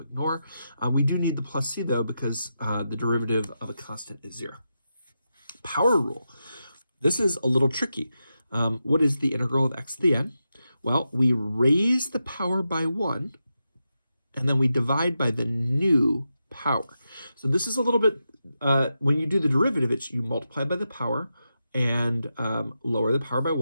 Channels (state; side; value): inverted; both; correlation -0.88